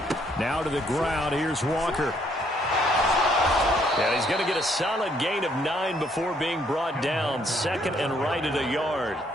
Now to the ground. Here's Walker. And he's going to get a solid gain of 9 before being brought down. 2nd and right at a yard.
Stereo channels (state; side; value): normal; both; correlation 0.68